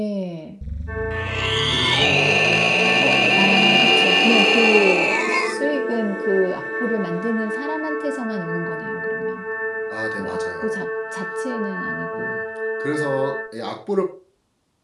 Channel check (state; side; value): identical; both; correlation 1.00